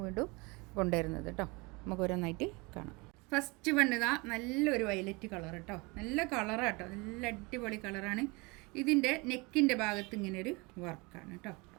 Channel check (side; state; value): left; quieter; 26.6 dB